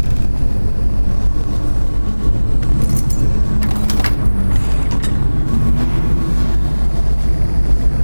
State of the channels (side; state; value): both; inverted; correlation -1.00